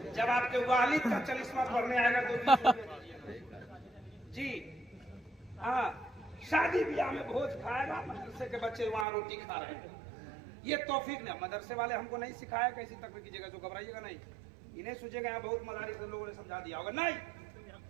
जब आपके वालिद का 40वां पढ़ने आएगा तो 20 रुपया दीजिए। जी हाँ, शादी ब्याह में भोज खाएगा, मदरसे के बच्चे वहां रोटी खा रहे हैं। ये तौफीक ने मदरसे वाले हमको नहीं सिखाया कैसी तकलीफ कीजिएगा, जो घबराइएगा नहीं, इन्हें सोचेगा यहाँ बहुत मदारी से लोगों ने समझा दिया होगा। नहीं,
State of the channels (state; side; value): drops out; left; at 9.1 s